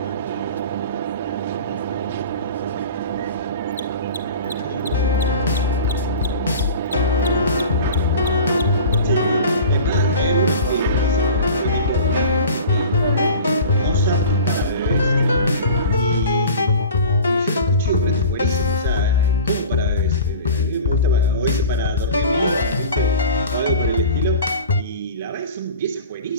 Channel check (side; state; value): both; inverted; correlation -0.39